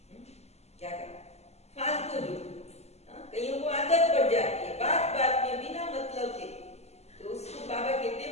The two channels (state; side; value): late; right; 0.31 ms